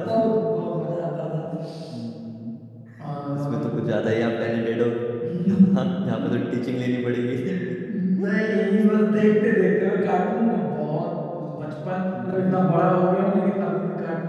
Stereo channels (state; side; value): identical; both; correlation 1.00